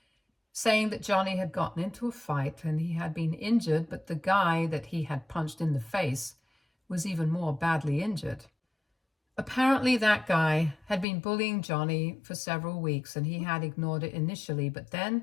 saying that Johnny had gotten into a fight and he had been injured, but the guy that he had punched in the face was even more badly injured. Apparently that guy had been bullying Johnny for several weeks and he had ignored it initially, but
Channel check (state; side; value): drops out; right; at 11.1 s